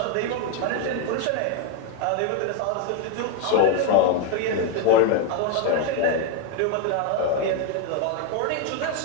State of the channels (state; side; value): different; both; correlation 0.01